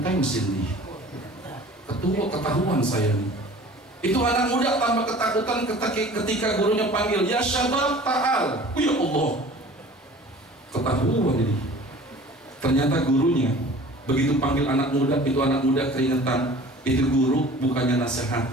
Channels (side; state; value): both; normal; correlation 0.45